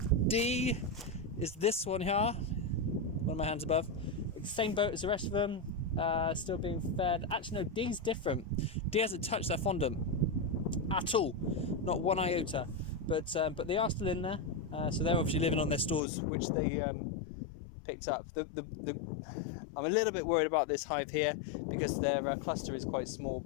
D is this one here, one of my hands above. Same boat as the rest of them. Still being fed. Actually, no, D's different. D hasn't touched their fondant at all, not one iota. But they are still in there. So they're obviously living on their stores, which they picked up. I'm a little bit worried about this hive here because their cluster is quite small,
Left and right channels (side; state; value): right; drops out; at 16.0 s